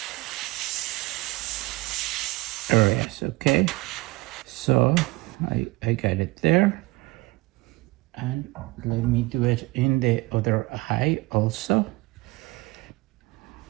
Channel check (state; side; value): quieter; left; 22.4 dB